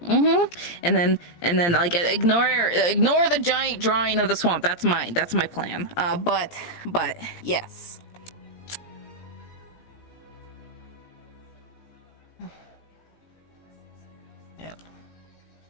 And then like ignore the giant drawing of the swamp. That's mine. That's my plan. But yes. Yeah.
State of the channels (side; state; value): right; late; 17 ms